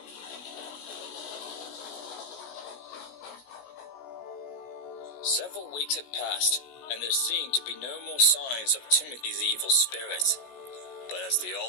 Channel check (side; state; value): right; late; 16 ms